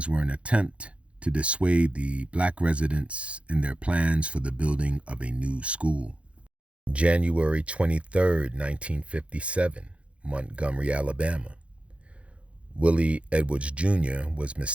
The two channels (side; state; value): left; late; 0.061 ms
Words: were an attempt to dissuade the Black residents in their plans for the building of a new school. January 23rd, 1957, Montgomery, Alabama. Willie Edwards Jr. was